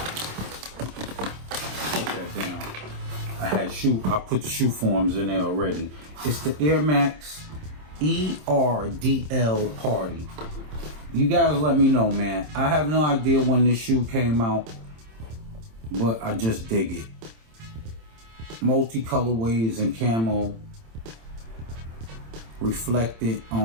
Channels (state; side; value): late; left; 27 ms